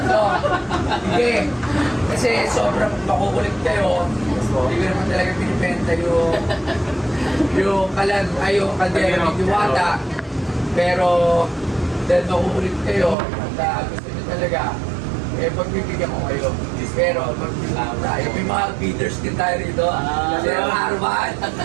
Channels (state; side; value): drops out; left; at 13.2 s